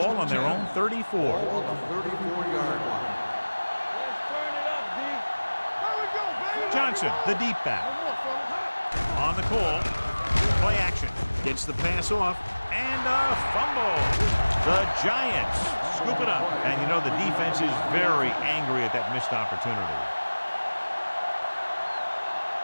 on their own 34. Ball on the 34-yard line. Let's turn it up, D. There we go, baby. Johnson, the deep back. One more, fella. On the call. Play action. Gets the pass off. And a fumble. The Giants scoop it up. And you know the defense is very angry at that missed opportunity.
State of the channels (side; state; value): both; inverted; correlation -1.00